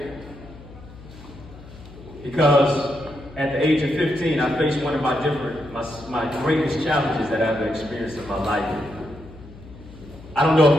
because at the age of 15, I faced one of my greatest challenges that I've experienced in my life. I don't know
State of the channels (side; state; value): left; noise; hum, 18 dB below the sound